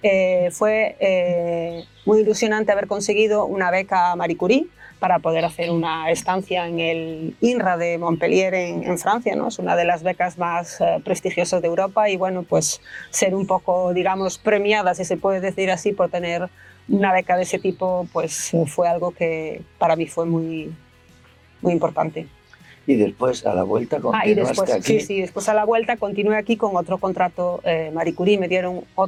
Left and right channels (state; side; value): identical; both; correlation 1.00